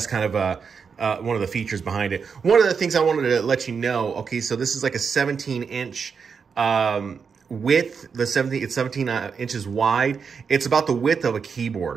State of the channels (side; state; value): left; quieter; 6.0 dB